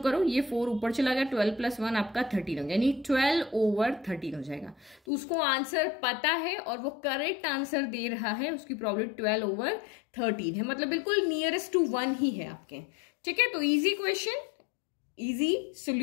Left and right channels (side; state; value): right; drops out; at 5.0 s